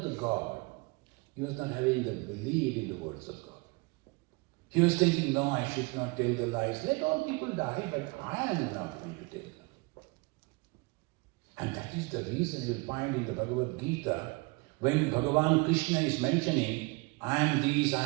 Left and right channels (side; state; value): left; quieter; 27.3 dB